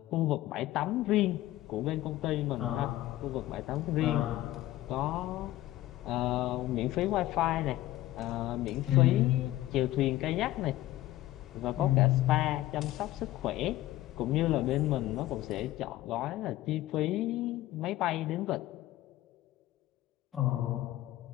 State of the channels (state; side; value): quieter; right; 15.7 dB